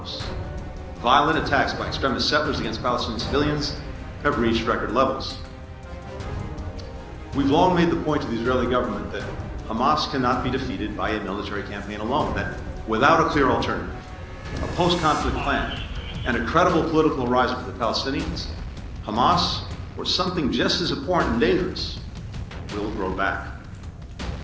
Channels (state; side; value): identical; both; correlation 1.00